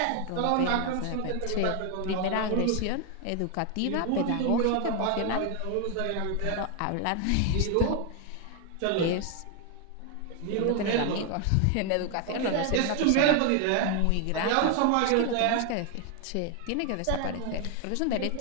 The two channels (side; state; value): both; different; correlation 0.01